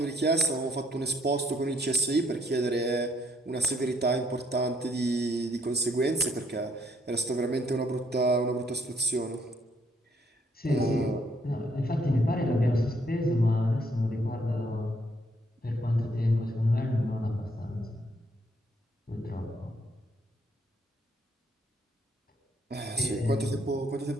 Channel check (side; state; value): both; normal; correlation 0.68